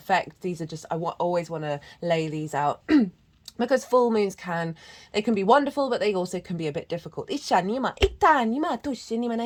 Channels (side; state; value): both; identical; correlation 1.00